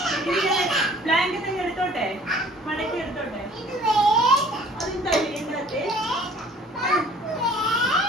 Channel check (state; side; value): normal; both; correlation 0.52